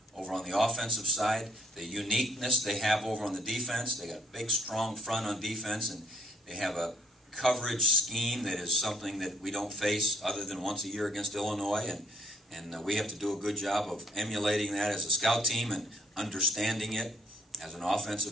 over on the offensive side, the uniqueness they have over on the defense. They got a big, strong front on defense, and they have a coverage scheme that is something that we don't face other than once a year against Illinois, and we have to do a good job of emulating that as a scout team and understanding it as an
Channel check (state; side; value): normal; both; correlation 0.66